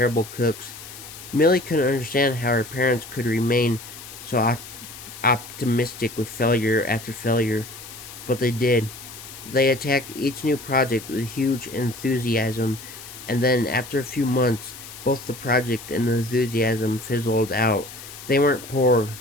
cooks. Millie couldn't understand how her parents could remain so optimistic with failure after failure, but they did. They attacked each new project with huge enthusiasm, and then after a few months, both the project and the enthusiasm fizzled out. They weren't poor,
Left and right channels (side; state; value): left; noise; hiss, 14 dB below the sound